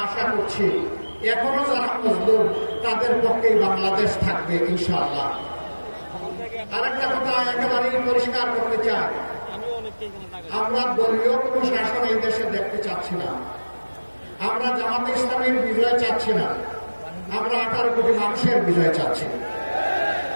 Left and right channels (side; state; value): both; inverted; correlation -1.00